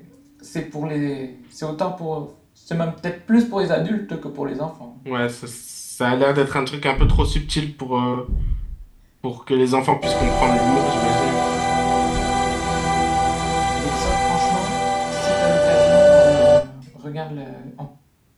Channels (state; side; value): identical; both; correlation 1.00